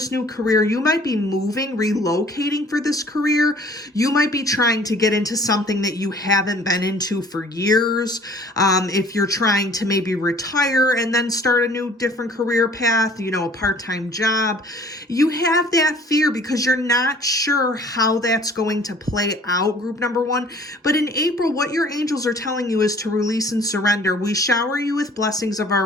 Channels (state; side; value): normal; both; correlation 0.53